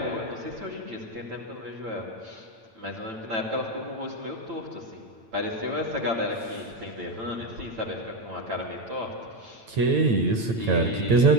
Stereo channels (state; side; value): late; left; 8.9 ms